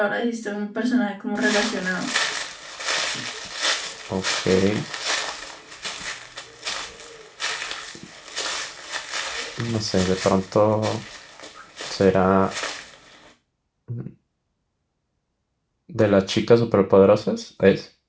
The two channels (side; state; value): both; identical; correlation 1.00